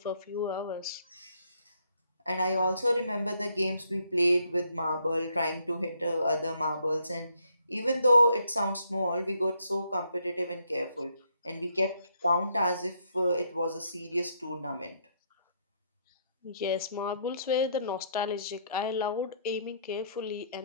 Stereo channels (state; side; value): inverted; both; correlation -0.71